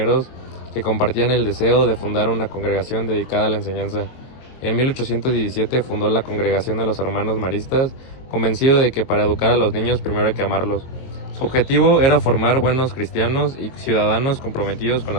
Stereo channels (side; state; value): right; late; 22 ms